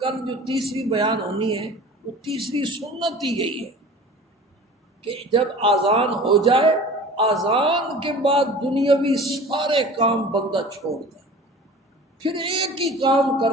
کل جو تیسری بیان ہونی ہے وہ تیسری سنت ہی یہی ہے کہ جب آذان ہو جائے، آذان کے بعد دنیاوی سارے کام بندہ چھوڑ دے، پھر ایک ہی کام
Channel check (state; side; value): normal; both; correlation 0.41